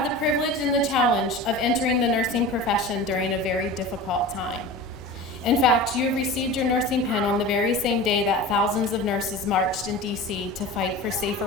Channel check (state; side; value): normal; both; correlation 0.33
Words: the privilege and the challenge of entering the nursing profession during a very difficult time. In fact, you received your nursing pen on the very same day that thousands of nurses marched in DC to fight for safer